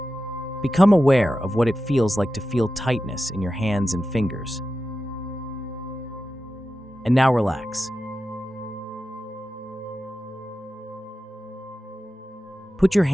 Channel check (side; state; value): both; normal; correlation 0.92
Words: Become aware of what it feels like to feel tightness in your hands and fingers. And now relax. Put your